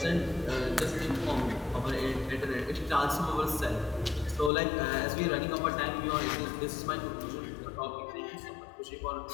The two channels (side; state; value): right; drops out; at 4.5 s